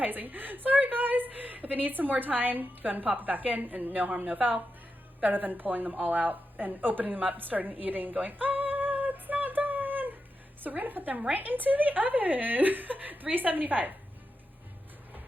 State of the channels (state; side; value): normal; both; correlation 0.88